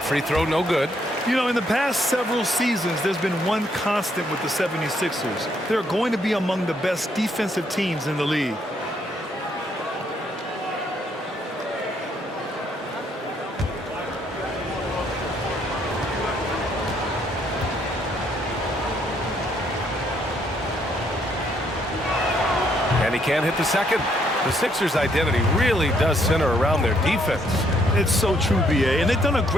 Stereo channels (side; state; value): both; normal; correlation 0.71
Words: free throw no good. You know, in the past several seasons, there's been one constant with the 76ers. They're going to be among the best defensive teams in the league. And he can't hit the second. The Sixers' identity really does center around their defense. It's so true, BA, and they've done a